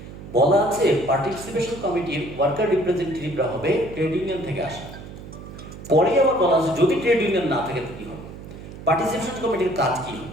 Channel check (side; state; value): right; noise; hum, 14 dB below the sound